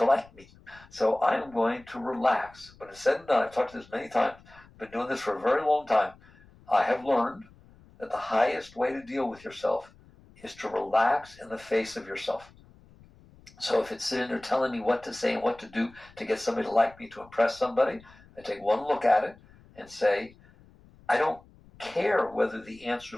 like me. So I am going to relax. When it's said and done, I've talked to this many times, I've been doing this for a very long time. I have learned that the highest way to deal with yourself is to relax in the face of yourself. So if it's sitting there telling me what to say and what to do to get somebody to like me, to impress somebody, I take one look at it and say, I don't care whether the answer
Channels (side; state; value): left; noise; rumble, 25 dB below the sound